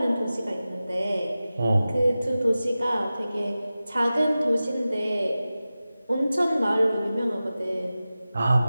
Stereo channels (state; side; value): inverted; both; correlation -0.95